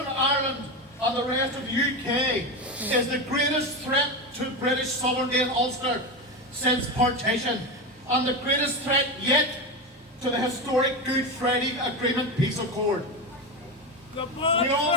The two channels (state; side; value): normal; both; correlation 0.17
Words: Ireland and the rest of the UK is the greatest threat to British sovereignty in Ulster since partition, and the greatest threat yet to the historic Good Friday Agreement peace accord. The Good